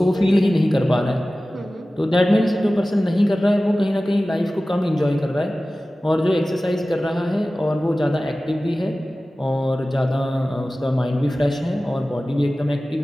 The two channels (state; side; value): normal; both; correlation 0.96